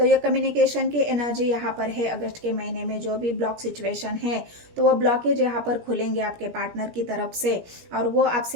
ये कम्युनिकेशन की एनर्जी यहाँ पर है। अगस्त के महीने में जो भी ब्लॉक सिचुएशन है, तो वो ब्लॉकेज यहाँ पर खुलेंगे आपके पार्टनर की तरफ से और वो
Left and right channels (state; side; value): late; left; 17 ms